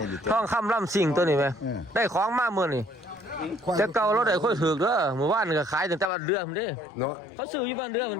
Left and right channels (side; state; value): right; drops out; at 6.1 s